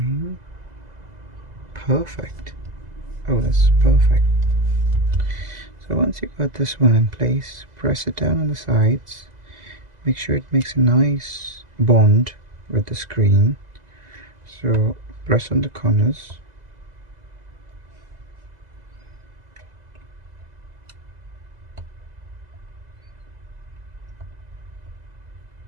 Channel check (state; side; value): late; left; 2.0 ms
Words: Perfect. Oh, that's perfect. So once you got this one in place, press it down on the sides. Make sure it makes a nice bond with the screen. So press on the corners.